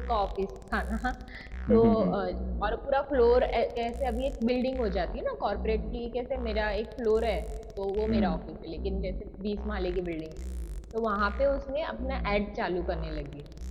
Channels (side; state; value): both; identical; correlation 1.00